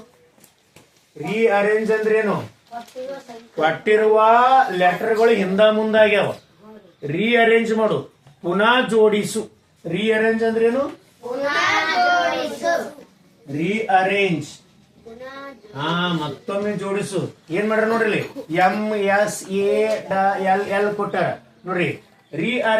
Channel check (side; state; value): both; identical; correlation 1.00